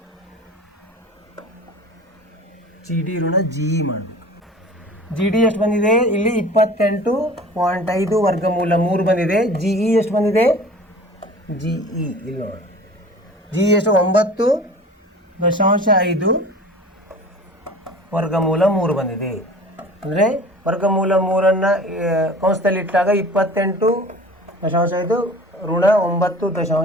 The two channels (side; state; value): both; normal; correlation 0.42